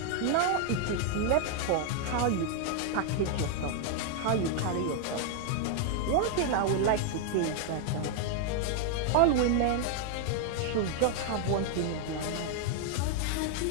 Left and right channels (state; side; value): different; both; correlation 0.00